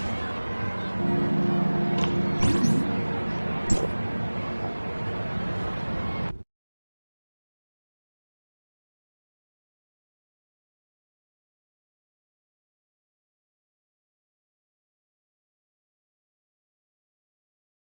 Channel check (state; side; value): inverted; both; correlation -1.00